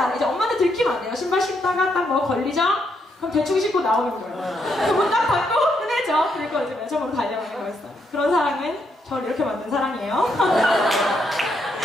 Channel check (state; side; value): normal; both; correlation 0.77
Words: 이제 엄마한테 들키면 안 돼요. 신발 신다가 딱 뭐 걸리죠? 그럼 대충 신고 나오는 거예요. 그문 딱 닫고 끝내죠. 그리고 이제 매점으로 달려가는 거였어요. 그런 사랑은 저를 이렇게 만든 사랑이에요.